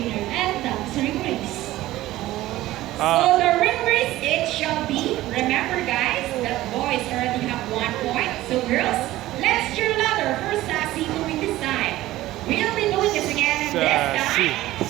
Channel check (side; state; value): left; quieter; 16.1 dB